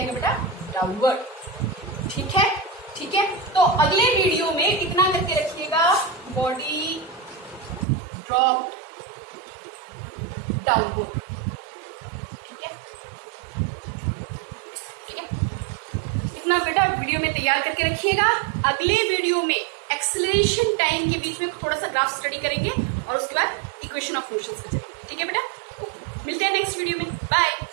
बेटा, डाउनवर्ड। ठीक है, ठीक है, तो अगले वीडियो में इतना करके रखिएगा, बॉडी ड्रॉप डाउनवर्ड। इतना बेटा वीडियो में तैयार करके रखिएगा। अगले वीडियो में एक्सेलरेशन टाइम के बीच में थोड़ा सा ग्राफ स्टडी करेंगे और उसके बाद इक्वेशन ऑफ मोशन पे चलेंगे। ठीक है बेटा, ओके, मिलते हैं नेक्स्ट वीडियो में, बाय।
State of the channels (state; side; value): drops out; left; at 7.9 s